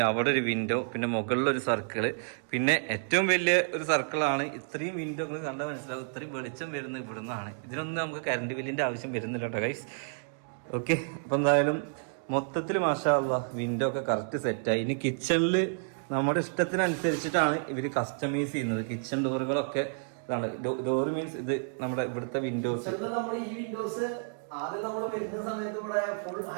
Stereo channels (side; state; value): left; silent; digital silence